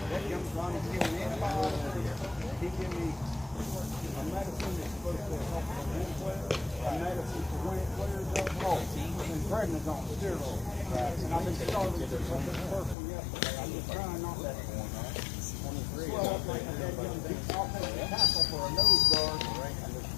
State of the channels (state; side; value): drops out; right; at 13.0 s